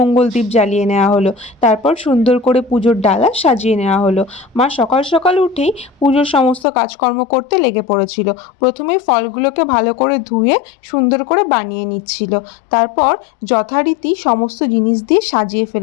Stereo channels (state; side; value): drops out; right; at 6.7 s